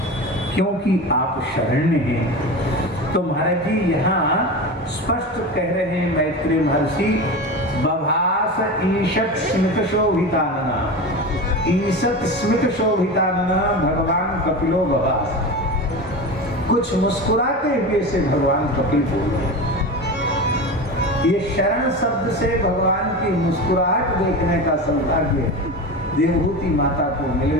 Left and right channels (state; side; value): normal; both; correlation 0.27